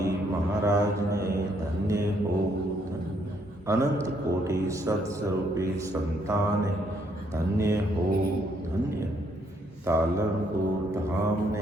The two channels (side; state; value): both; normal; correlation 0.71